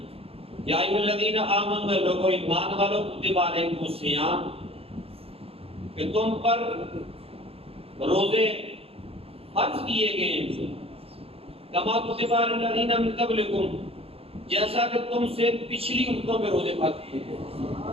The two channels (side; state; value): left; late; 0.28 ms